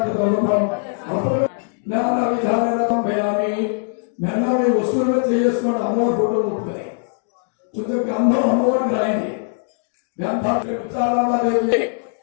జ్ఞాన విధానం భయామి మెల్లవి వస్తువులు చేసుకుని అమ్మవారి ఫోటో ముట్టుకుని కొంచెం గంధం అమ్మవారికి రాయింది ముచ్చారామదేవి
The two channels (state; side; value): silent; right; 65 dB below the other